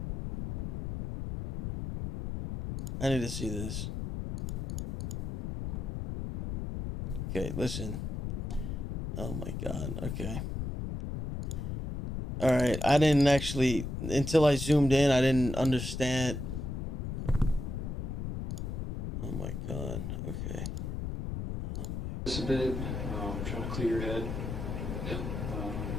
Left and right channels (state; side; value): noise; left; rumble, 4 dB below the sound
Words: I need to see this. Okay, listen. Oh my God. Okay. All right. I didn't actually, until I zoomed in, I didn't understand. Oh my God. Okay. Just a bit. Trying to clear your head.